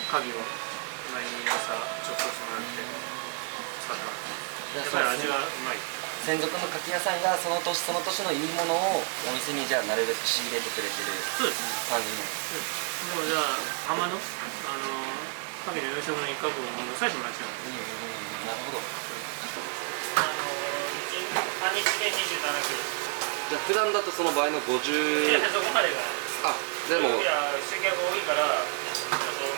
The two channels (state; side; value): quieter; left; 39.4 dB